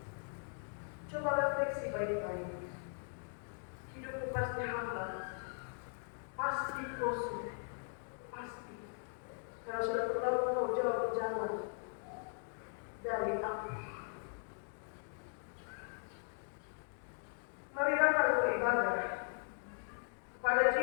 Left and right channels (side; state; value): right; silent; 52 dB below the other